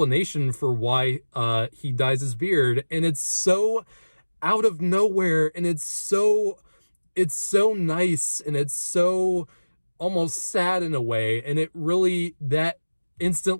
for why he dyes his beard, and it's so out of nowhere, and it's so nice, and it's so almost sad in a way, and that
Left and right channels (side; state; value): both; inverted; correlation -1.00